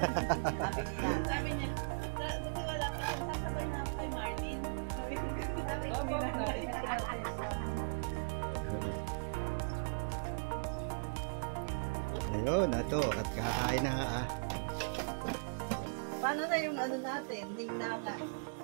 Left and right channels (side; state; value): left; silent; digital silence